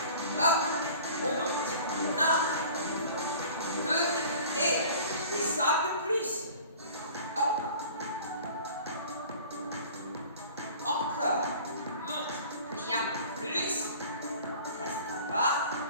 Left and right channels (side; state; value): both; inverted; correlation -0.45